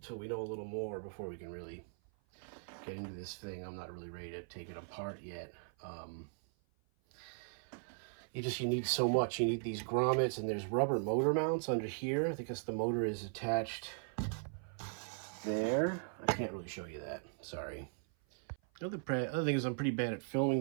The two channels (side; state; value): left; silent; 52 dB below the other